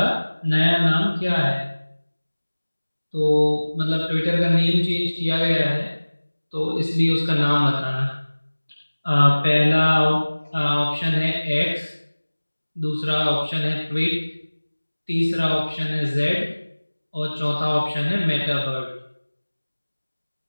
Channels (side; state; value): both; inverted; correlation -1.00